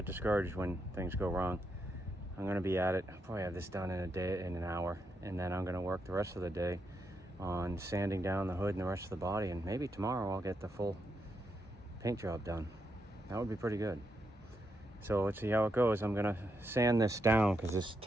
discouraged when things go wrong. I'm going to be at it. I'll probably have this done in an hour, and then I'm going to work the rest of the day on sanding down the hood and the rest of the body, and maybe tomorrow I'll get the full paint job done. That would be pretty good. So let's see how it goes. I'm gonna sand this down because this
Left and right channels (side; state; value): both; normal; correlation 0.82